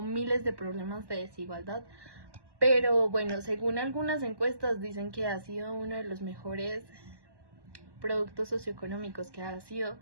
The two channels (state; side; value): late; left; 1.1 ms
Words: miles de problemas de desigualdad, pero bueno, según algunas encuestas dicen que ha sido uno de los mejores productos socioeconómicos que ha sido,